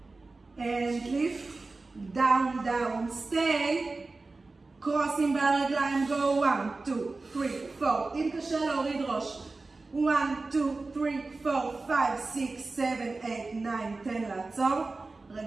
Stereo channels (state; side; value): quieter; left; 3.6 dB